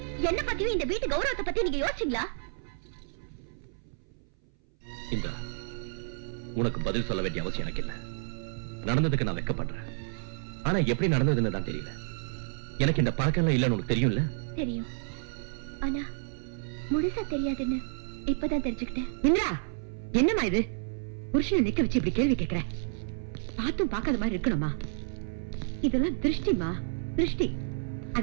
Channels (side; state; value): left; silent; 58 dB below the other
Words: என்ன பத்தியும் இந்த வீட்டு கௌரவத்தை பத்தி நீங்க யோசிச்சீங்களா? இந்த உனக்கு பதில் சொல்ல வேண்டிய அவசியம் எனக்கு இல்ல. நடந்ததுக்கு நான் வெட்கப்படுறேன். ஆனா எப்படி நடந்ததுன்னு தான் தெரியல. எனக்கு இந்த பழக்கம் எல்லாம் இல்லன்னு உனக்கு தெரியும்ல? தெரியும், ஆனா முழுசா தெரியாதுன்னு இப்பதான் தெரிஞ்சுக்கிட்டேன். இந்திரா, என்னம்மா இது? புருஷனை நிக்க வச்சு இப்படி கேள்வி கேட்கிற? பார்த்தும் பார்க்காத மாதிரி இருக்கணுமா? இதெல்லாம் திருஷ்டிமா, திருஷ்டி.